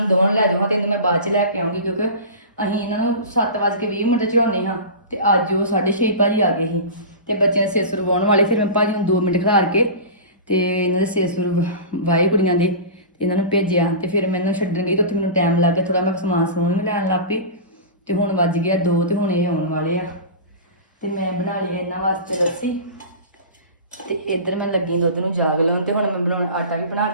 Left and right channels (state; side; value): inverted; both; correlation -0.30